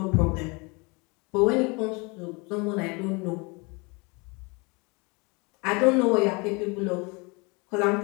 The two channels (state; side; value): quieter; right; 28.8 dB